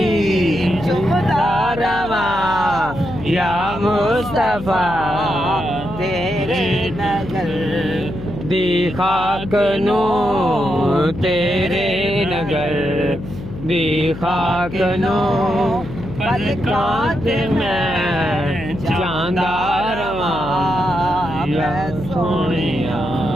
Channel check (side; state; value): left; noise; hum, 11 dB below the sound